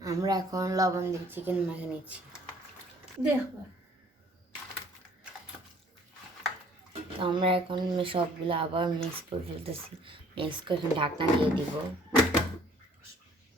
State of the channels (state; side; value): normal; both; correlation 0.57